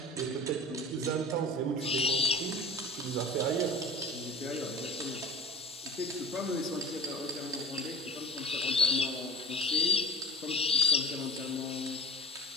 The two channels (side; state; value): both; normal; correlation 0.33